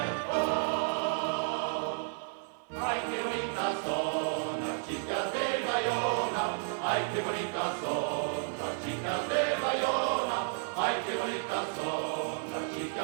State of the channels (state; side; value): silent; left; digital silence